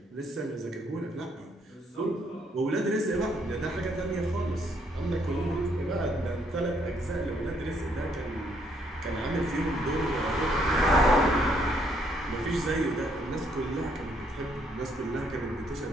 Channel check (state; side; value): normal; both; correlation 0.70